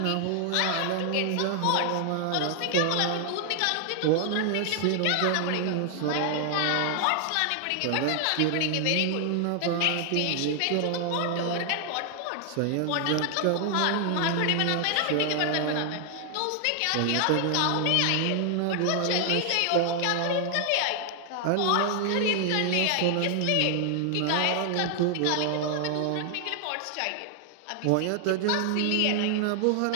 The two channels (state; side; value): different; both; correlation 0.00